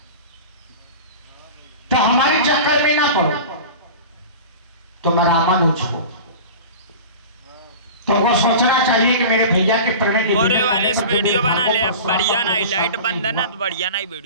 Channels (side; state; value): both; inverted; correlation -0.35